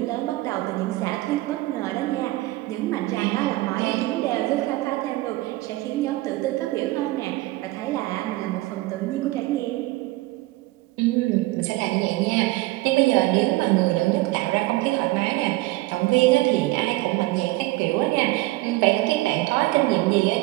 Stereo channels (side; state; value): left; quieter; 19.5 dB